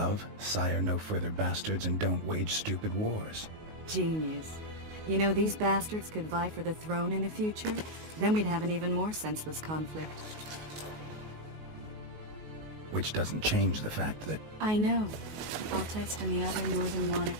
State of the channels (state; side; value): late; left; 19 ms